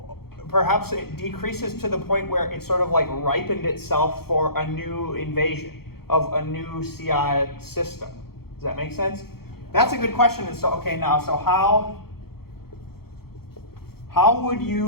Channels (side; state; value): right; late; 0.95 ms